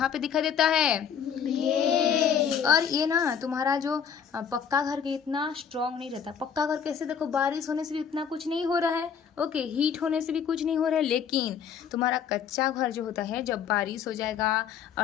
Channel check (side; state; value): right; quieter; 7.6 dB